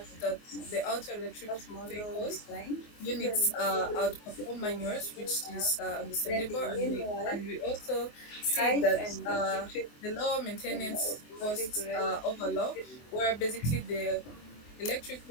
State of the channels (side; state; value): right; late; 24 ms